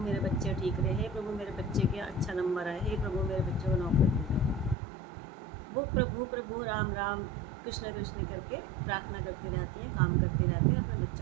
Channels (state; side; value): drops out; left; at 4.8 s